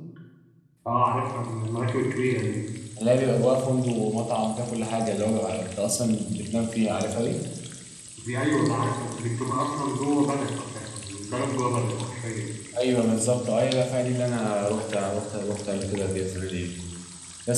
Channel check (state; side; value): identical; both; correlation 1.00